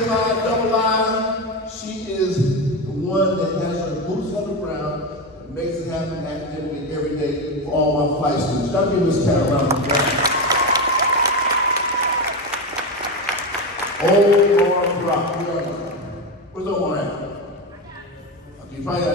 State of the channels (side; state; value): both; normal; correlation 0.16